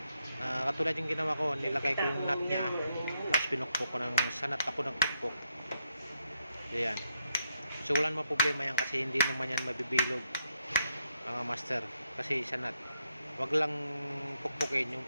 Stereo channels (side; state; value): both; inverted; correlation -0.80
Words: katulad yung ginawa ko, nilagay ko yung nut niya, tapos pinukpok ko ng sanat ako ng pukpok. So yan. So wala naman problema yan kasi hindi naman yan mabibilog, mga master. Kasi sanat. Huwag lang pukpukin yung